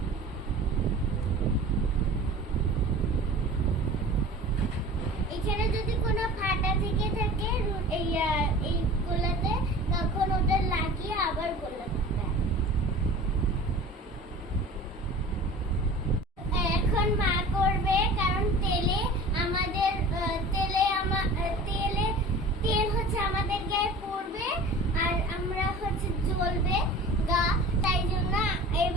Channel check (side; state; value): both; normal; correlation 0.40